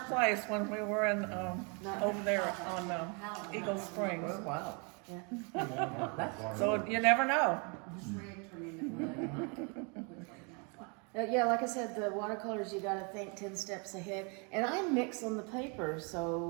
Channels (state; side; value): quieter; left; 34.2 dB